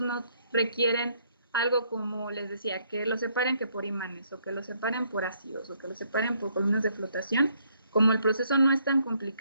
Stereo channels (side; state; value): both; inverted; correlation -0.70